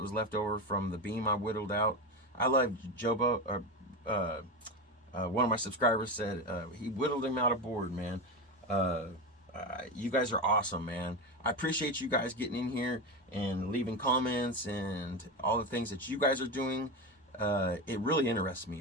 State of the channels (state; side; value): normal; both; correlation 0.18